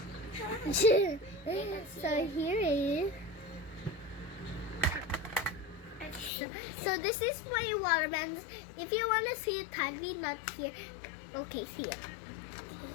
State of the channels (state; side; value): drops out; right; at 6.3 s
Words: So here is. So this is my watermelons. If you want to see it tightly, not here. Okay, here.